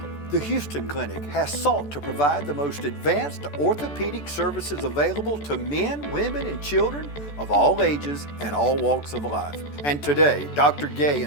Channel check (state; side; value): late; right; 14 ms